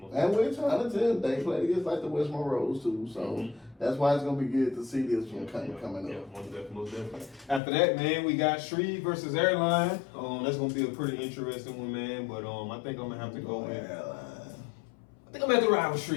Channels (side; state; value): right; drops out; at 7.6 s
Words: And we're trying to tell them they play against like the West Monroes too. So that's why it's gonna be good to see this one coming up. Yeah, most definitely. After that, man, we got Shreve versus Airline. That's gonna be a pretty interesting one, man. But I think I'm gonna have to go with Airline. I think I'm gonna have to ride with